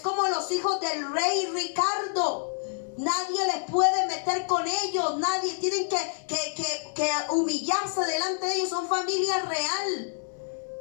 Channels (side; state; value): right; silent; digital silence